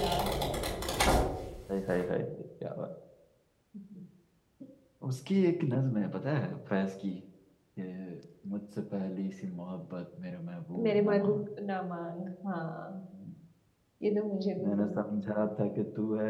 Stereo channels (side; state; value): both; identical; correlation 1.00